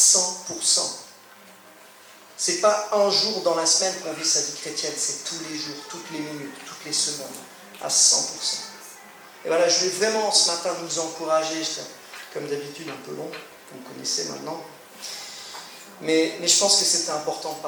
C'est pas un jour dans la semaine qu'on vit sa vie chrétienne, c'est tous les jours, toutes les minutes, toutes les secondes, à 100%. Et voilà, je vais vraiment ce matin nous encourager, comme d'habitude un peu long, vous me connaissez maintenant, mais je pense que c'était important de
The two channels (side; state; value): both; identical; correlation 1.00